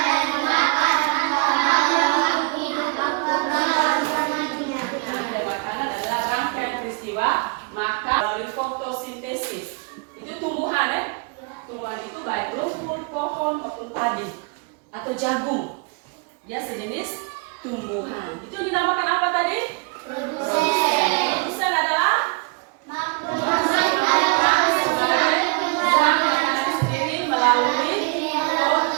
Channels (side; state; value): left; quieter; 32.2 dB